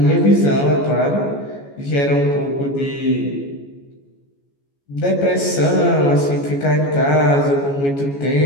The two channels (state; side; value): late; right; 14 ms